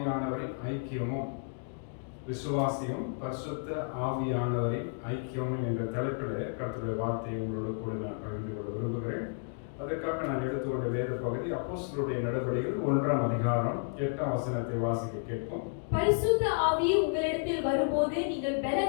ஐக்கியமும் பரிசுத்த ஆவியானவரின் ஐக்கியமும் என்ற தலைப்பில் கர்த்தருடைய வார்த்தையை உங்களோட கூட நான் பகிர்ந்து கொள்ள விரும்புகிறேன். அதற்காக நான் எடுத்துக்கொண்ட வேத பகுதி அப்போஸ்தலருடைய நடவடிக்கைகள் 1ஆம் அதிகாரம் 8ஆம் வசனத்தை வாசிக்க கேட்போம். பரிசுத்த ஆவி உங்களிடத்தில் வரும்போது நீங்கள்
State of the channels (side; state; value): right; silent; 57 dB below the other